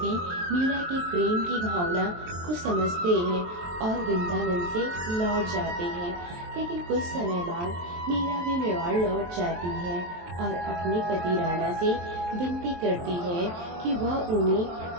मीरा के प्रेम की भावना को समझते हैं और वृंदावन से लौट जाते हैं। लेकिन कुछ समय बाद मीरा भी मेवाड़ लौट जाती है और अपने पति राणा से विनती करती है कि वह उन्हें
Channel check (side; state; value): left; late; 23 ms